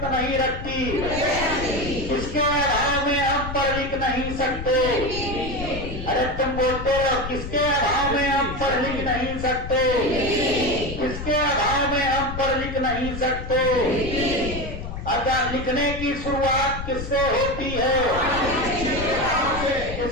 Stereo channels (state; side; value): noise; left; rumble, 8 dB below the sound